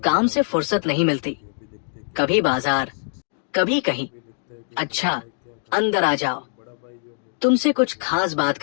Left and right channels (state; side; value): silent; right; digital silence